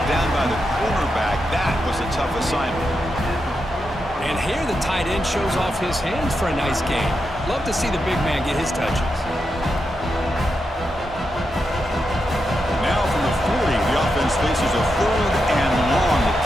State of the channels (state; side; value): normal; both; correlation 0.86